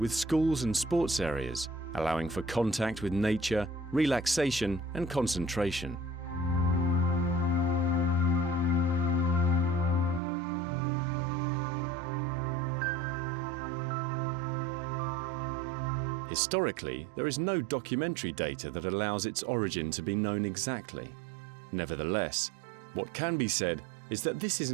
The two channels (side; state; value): left; drops out; at 10.2 s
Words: with schools and sports areas, allowing for contact with nature, relaxation and concentration. Historically, there is no documentary data that allows its origin to be known exactly. Nevertheless, what can be said is that this is